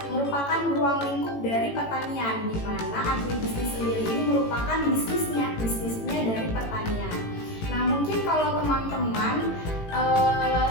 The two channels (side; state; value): right; late; 18 ms